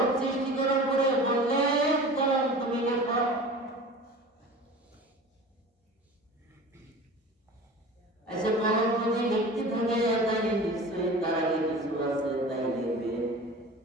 সৃষ্টি করার পরে বললেন কলম তুমি লেখো আচ্ছা কলম যদি লিখতে থাকে তাই নিশ্চয়ই তার আগে কিছু আছে তাই লিখবে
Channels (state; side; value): normal; both; correlation 0.38